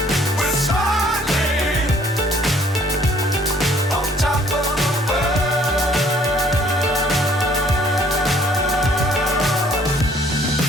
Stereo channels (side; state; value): both; normal; correlation 0.59